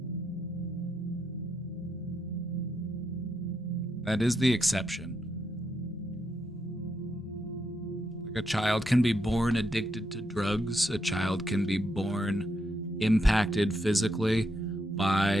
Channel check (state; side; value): normal; both; correlation 0.81